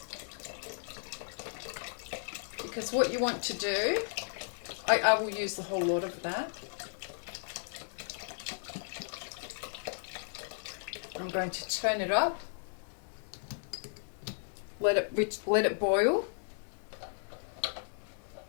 because what you want to do, I will use the whole lot of that. I'm going to turn it up, let it boil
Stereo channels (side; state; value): right; silent; digital silence